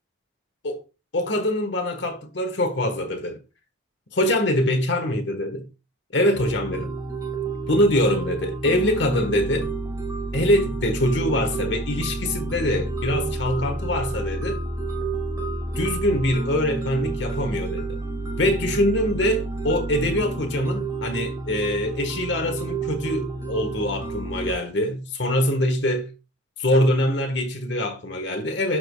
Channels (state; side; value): normal; both; correlation 0.40